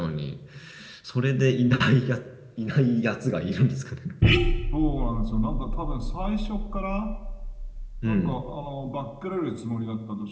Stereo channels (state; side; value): identical; both; correlation 1.00